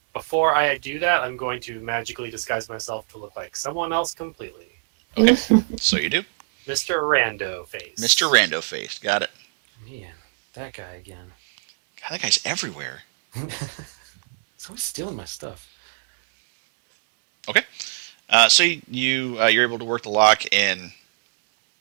Before I do that, I'm going to magically disguise myself to look like someone else completely. Okay. So you do, Mr. Rando Face. Mr. Rando Face. Got it. Man, that guy again. God, that guy's everywhere. He's always stealing my stuff. Okay. So you're able to work the lock, and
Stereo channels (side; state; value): left; silent; 64 dB below the other